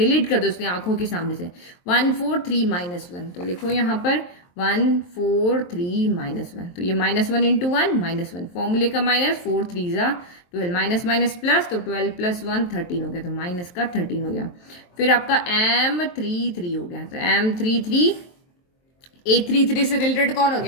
कर दो उसकी आंखों के सामने से। 1 4 3 -1, तो लिखो यहाँ पर 1 4 3 -1, तो ये -1 × 1 -1, फॉर्मूले का माइनस, 4 3 × 12, माइनस माइनस प्लस, तो 12 + 1 13 हो गया, तो -13 हो गया। फिर आपका M33 हो गया, तो M33 A33 से रिलेटेड कौन हो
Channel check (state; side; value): late; right; 23 ms